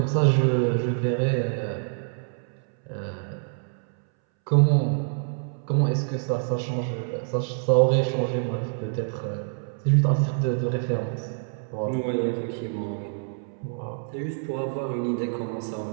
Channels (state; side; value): silent; left; 61 dB below the other